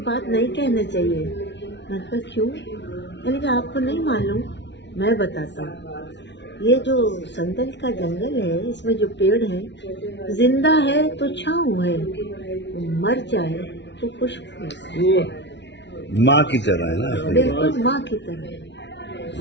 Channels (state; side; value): late; right; 0.51 ms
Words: بات نہیں کہنا چاہیے. میں نے کہا کیوں؟ میں نے کہا آپ کو نہیں معلوم، میں بتاتا ہوں. یہ جو سندل کا جنگل ہے اس میں جو پیڑ ہیں، زندہ ہے تو چھاؤں ہے، مر جائے تو خوشبو ہے. ماں کی طرح ہے نا. بالکل ماں کی طرح.